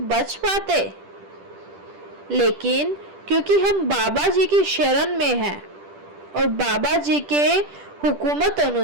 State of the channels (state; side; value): late; left; 10 ms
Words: बच पाते? लेकिन क्योंकि हम बाबा जी की शरण में हैं और बाबा जी के हुकूमत